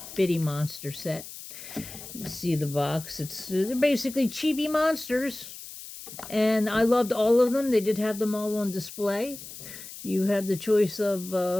Bitty Monster set. You see the box. They're basically chibi monsters, and I loved all of them. They did have them all on display. You have the choice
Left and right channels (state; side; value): noise; left; hiss, 13 dB below the sound